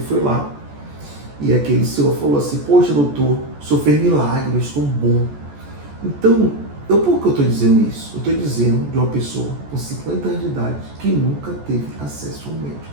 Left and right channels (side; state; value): left; late; 14 ms